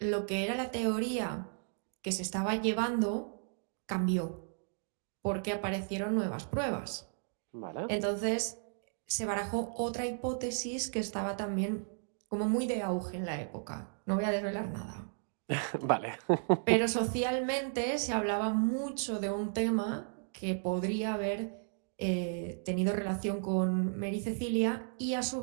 que era la teoría que se estaba llevando cambió, porque aparecieron nuevas pruebas. Vale. Entonces se barajó otra hipótesis que estaba también como muy de auge en la época. No voy a desvelar nada. Vale. Pero socialmente se hablaba mucho de un tema que podría haber tenido relación con Mary Cecilia y a su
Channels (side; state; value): left; silent; digital silence